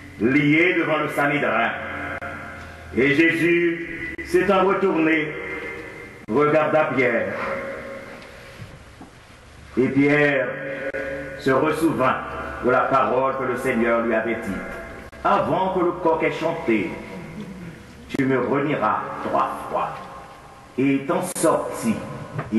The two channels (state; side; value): identical; both; correlation 1.00